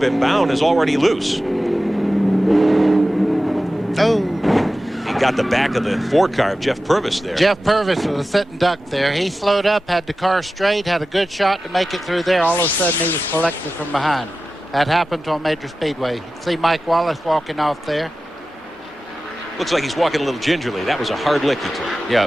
him, Bound is already loose. Oh. He got the back of the 4 car of Jeff Purvis there. Jeff Purvis was a sitting duck there. He slowed up, had the car straight, had a good shot to make it through there. All of a sudden, he was collected from behind. That happened on Major Speedway. You see Mike Wallace walking off there. Looks like he's walking a little gingerly. That was a hard lick he took. Yeah,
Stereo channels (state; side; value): normal; both; correlation 0.94